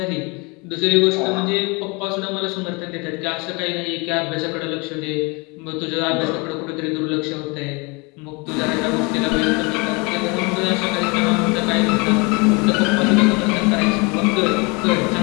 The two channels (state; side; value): quieter; right; 28.7 dB